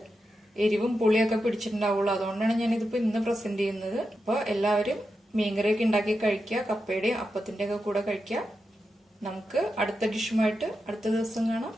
എരിവും പുളിയൊക്കെ പിടിച്ചിട്ടുണ്ടാവുള്ളൂ. അതുകൊണ്ടാണ് ഞാൻ ഇതിപ്പോ ഇന്ന് പ്രസന്റ് ചെയ്യുന്നത്. അപ്പൊ എല്ലാവരും മീൻകറിയൊക്കെ ഉണ്ടാക്കി കഴിക്കുക. കപ്പയുടെയും അപ്പത്തിന്റെ ഒക്കെ കൂടെ കഴിക്കുക. നമുക്ക് അടുത്ത ഡിഷുമായിട്ട് അടുത്ത ദിവസം കാണാം.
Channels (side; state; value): both; normal; correlation 0.88